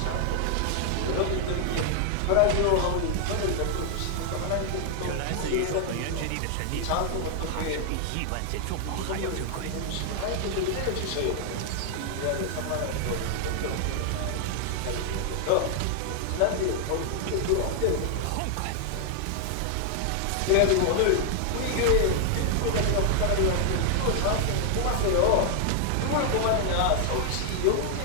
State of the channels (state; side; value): different; both; correlation 0.00